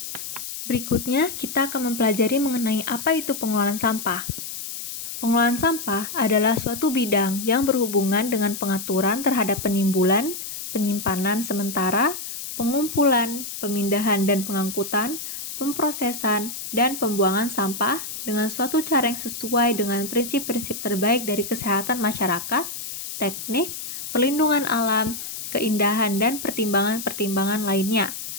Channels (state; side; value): noise; left; hiss, 8 dB below the sound